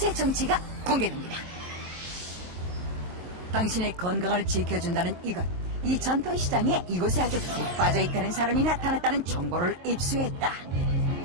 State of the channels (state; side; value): late; left; 22 ms